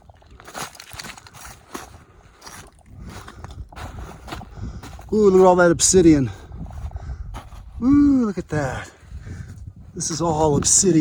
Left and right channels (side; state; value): both; identical; correlation 1.00